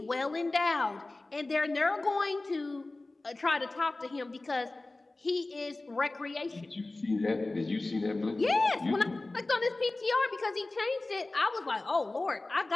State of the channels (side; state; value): right; quieter; 3.0 dB